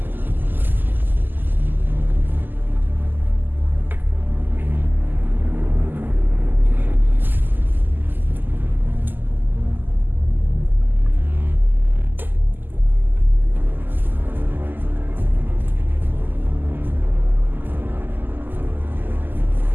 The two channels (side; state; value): left; late; 0.090 ms